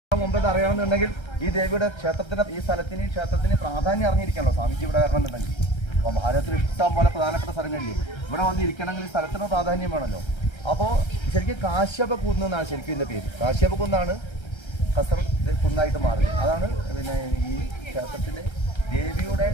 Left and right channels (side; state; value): right; late; 1.3 ms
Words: മുമ്പ് അറിയണമെന്നുണ്ടെങ്കിൽ ഈ ദേവിയുടെ ക്ഷേത്രത്തിന് ഈ ക്ഷേത്രത്തിന് പ്രാധാന്യം അറിഞ്ഞിരിക്കണല്ലോ സ്വാമിജി ഇവിടെ വരണമെന്നുണ്ടെങ്കിൽ. അപ്പോൾ ഭാരതത്തിൽ ഇഷ്ടം പോലെ പ്രധാനപ്പെട്ട സ്ഥലങ്ങളില്ലേ, ഇവിടെ വന്നിരിക്കണമെങ്കിൽ ഈ സ്ഥലത്തിന് പ്രാധാന്യം വേണമല്ലോ. അപ്പോൾ ശരിക്കും കാശ്യപ കുന്ന് എന്നാണ് ശരിക്കും ഇതിൻ്റെ പേര്. കാശ്യപ കുന്നാണ് കസർ കുന്നായിട്ട് മാറിയത്. അതാണ് പിന്നെ ഈ ക്ഷേത്രത്തിൻ്റെ ദേവിയുടെ